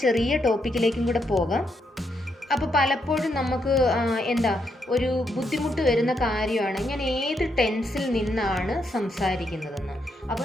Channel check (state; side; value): normal; both; correlation 0.79